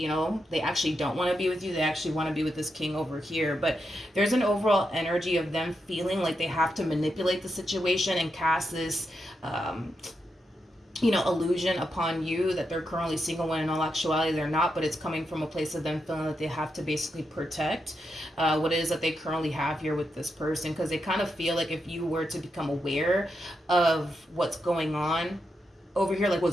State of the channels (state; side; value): normal; both; correlation 0.85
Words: they actually don't want to be with you. They actually want to be with this king over here. But there's an overall energy of them feeling like they have to manipulate the situation and cast this, illusion upon you that they're currently single, when in all actuality they're not. But it's coming from a place of them feeling that they have to basically protect what it is that they currently have here with this person, because they kind of feel like if you were to become aware of what's going on over here, like